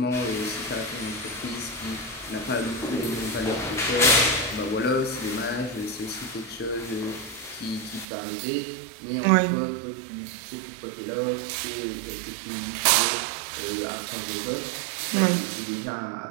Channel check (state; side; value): drops out; left; at 8.1 s